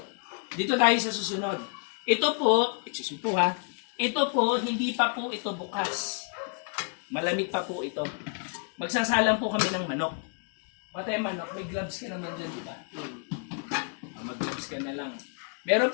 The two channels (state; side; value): quieter; right; 37.6 dB